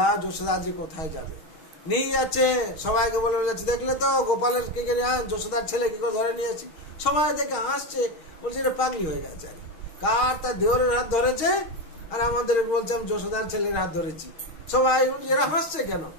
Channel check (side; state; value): right; late; 6.4 ms